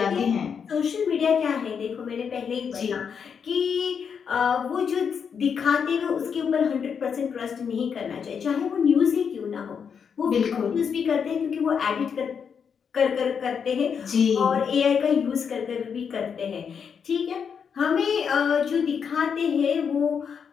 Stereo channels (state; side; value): quieter; right; 6.8 dB